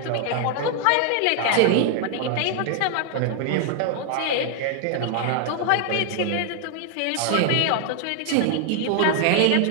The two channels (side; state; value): both; different; correlation 0.00